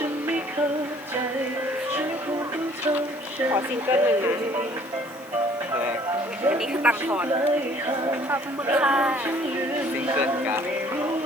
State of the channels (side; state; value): right; noise; hiss, 24 dB below the sound